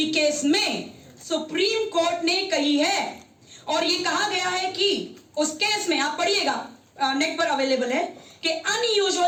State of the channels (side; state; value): both; identical; correlation 1.00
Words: केस में सुप्रीम कोर्ट ने कही है और ये कहा गया है कि उस केस में, आप पढ़िएगा, नेट पर अवेलेबल है, कि